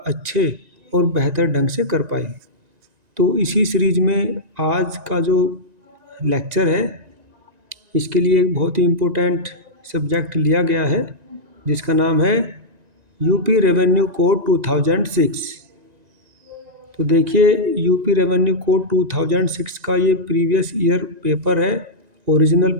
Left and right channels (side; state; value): left; late; 1.9 ms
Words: अच्छे और बेहतर ढंग से कर पाए। तो इसी सीरीज में आज का जो लेक्चर है, इसके लिए एक बहुत ही इम्पोर्टेंट सब्जेक्ट लिया गया है, जिसका नाम है यूपी रेवेन्यू कोड 2006। तो देखिए, यूपी रेवेन्यू कोड 2006 का ये प्रीवियस ईयर पेपर है, ओरिजिनल